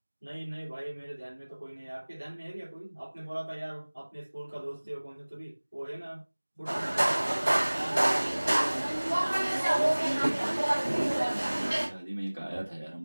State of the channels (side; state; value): both; inverted; correlation -1.00